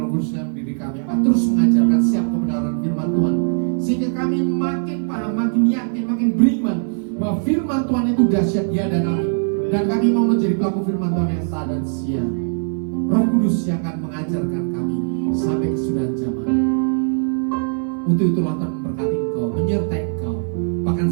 Kudus yang mendidik kami akan terus mengajarkan setiap kebenaran firman Tuhan, sehingga kami makin paham, makin yakin, makin beriman bahwa firman Tuhan itu dahsyat, dia dan kami. Dan kami mau menjadi pelaku firman Tuhan yang taat dan setia. Roh Kudus yang akan mengajarkan kami sampai kesudahan zaman. Untuk itulah Tuhan memberkati engkau, menyertai engkau, bahkan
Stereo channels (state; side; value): silent; left; digital silence